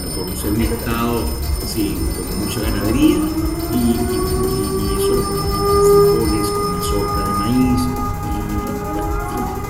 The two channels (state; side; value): identical; both; correlation 1.00